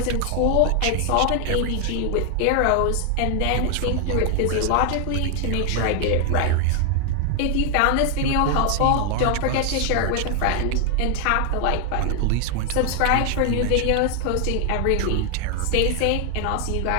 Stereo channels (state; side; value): different; both; correlation 0.00